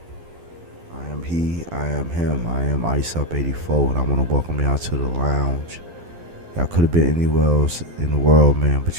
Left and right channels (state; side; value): late; left; 12 ms